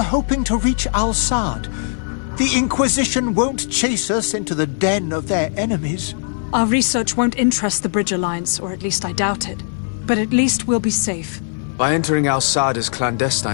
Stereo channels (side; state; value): right; silent; 66 dB below the other